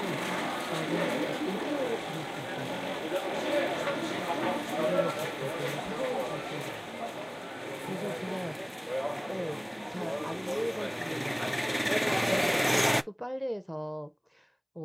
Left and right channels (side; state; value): both; identical; correlation 1.00